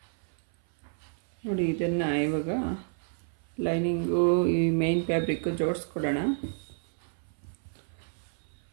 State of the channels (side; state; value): left; silent; 57 dB below the other